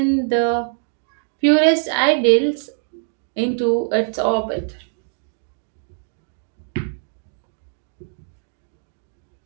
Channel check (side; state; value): left; silent; digital silence